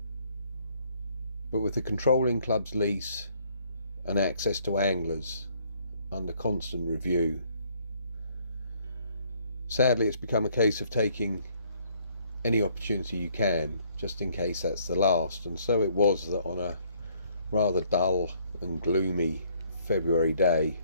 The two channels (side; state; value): both; inverted; correlation -0.65